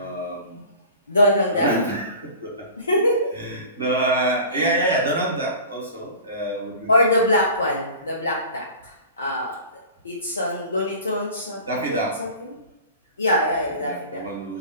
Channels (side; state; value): both; inverted; correlation -0.40